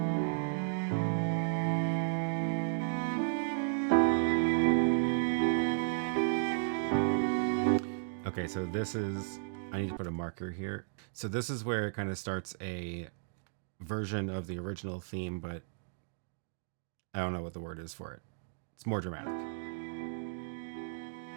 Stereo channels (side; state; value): left; silent; digital silence